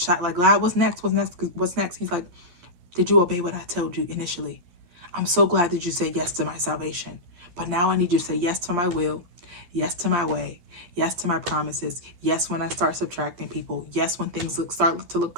like, God, what's next? What's next? What's next? He's like, did you obey what I told you initially? I'm so glad that you said yes to my salvation. But now I need you to say yes to my will, yes to my way, yes to my promises, yes when I start subtracting people, yes when things start to look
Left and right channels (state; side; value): late; left; 11 ms